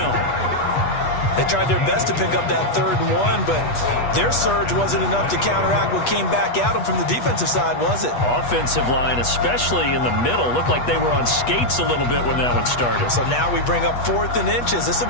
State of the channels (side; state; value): right; late; 8.2 ms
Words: They tried their best to pick up that 3rd and 1, but their surge wasn't enough to counteract what came back at them from the defensive side, was it? Offensive line, especially in the middle, looked like they were on skates a little bit when that one started. So now we bring up 4th and inches. This